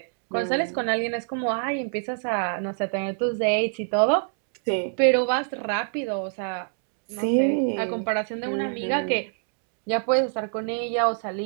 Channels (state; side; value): silent; left; digital silence